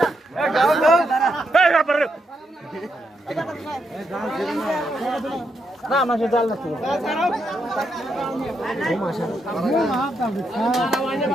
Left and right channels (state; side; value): normal; both; correlation 0.80